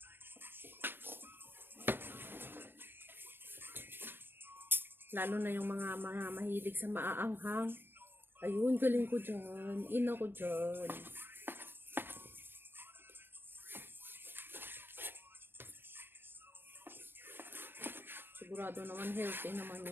Lalo na yung mga mahilig sa maaanghang. Ayun, galing ko dyan. Ina ko dyan. Sigurado naman healthy naman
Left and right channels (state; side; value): late; left; 0.10 ms